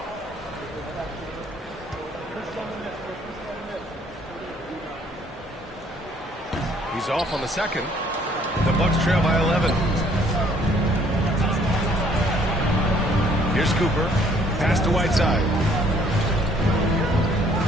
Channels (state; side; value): normal; both; correlation 0.62